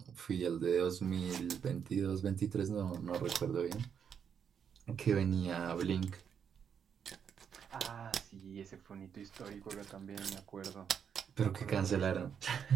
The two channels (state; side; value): quieter; left; 7.6 dB